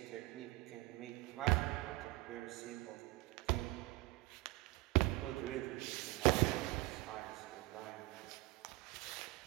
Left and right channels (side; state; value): left; quieter; 20.7 dB